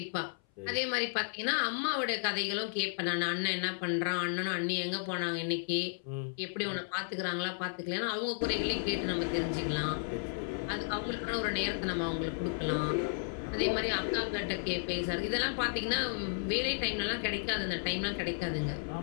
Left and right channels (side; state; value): right; silent; 55 dB below the other